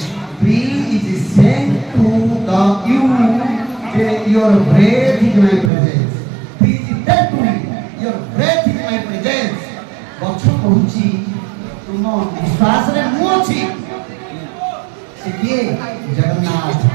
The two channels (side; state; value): left; drops out; at 5.7 s